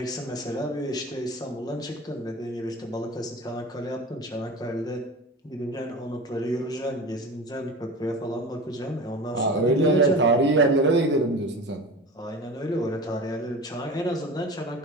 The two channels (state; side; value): normal; both; correlation 0.33